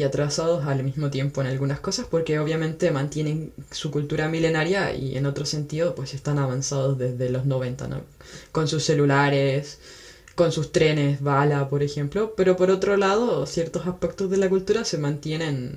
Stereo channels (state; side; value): identical; both; correlation 1.00